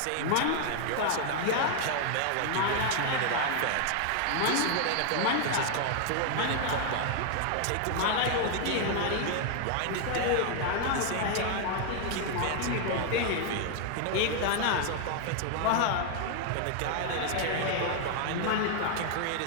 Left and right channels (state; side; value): different; both; correlation 0.00